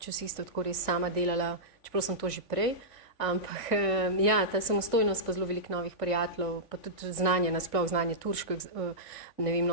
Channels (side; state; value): right; late; 3.5 ms